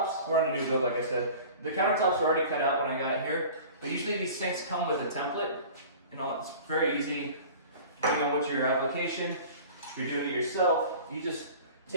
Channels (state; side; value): inverted; both; correlation -0.42